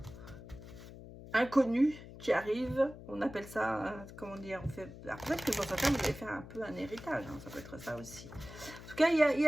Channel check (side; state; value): left; noise; hum, 15 dB below the sound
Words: inconnu qui arrive, on appelle ça, comment dire, on fait... Alors, peut-être que pour certains, vous allez faire un peu un héritage, hein, ça peut être ça aussi. En tout cas,